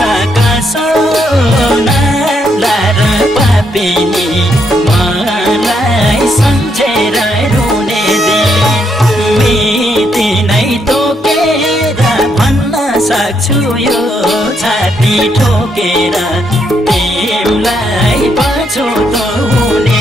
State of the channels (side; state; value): both; normal; correlation 0.76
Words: सोना लार पापिनी मलाई सम्झेर रुने मिति नै तोकेर भन्न सक्छु यो छाती ठोकेर तिमलाई पछुतो